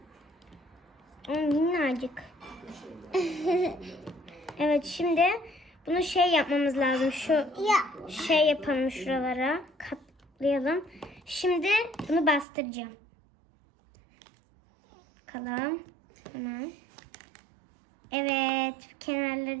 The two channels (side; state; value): left; drops out; at 12.5 s